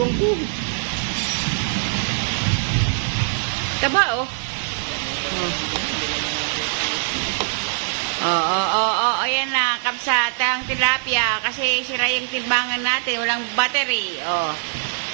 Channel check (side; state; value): left; silent; digital silence